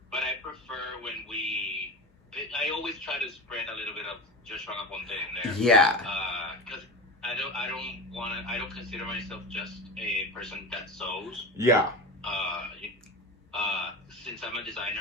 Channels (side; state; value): both; normal; correlation 0.27